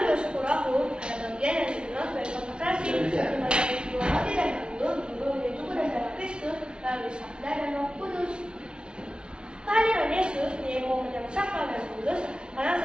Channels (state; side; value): late; left; 0.056 ms